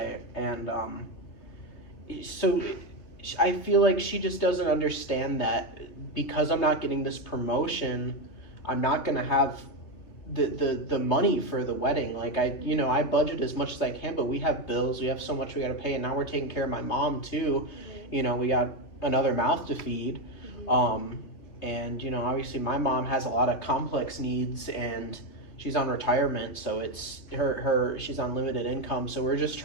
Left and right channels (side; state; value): right; late; 2.9 ms